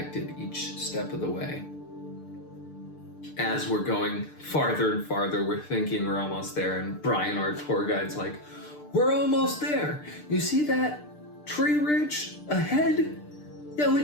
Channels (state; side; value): late; right; 6.7 ms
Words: each step of the way. As we're going farther and farther, we're thinking we're almost there, and Brian, our tour guide's like, "We're almost there. You see that tree ridge ahead? Yeah, we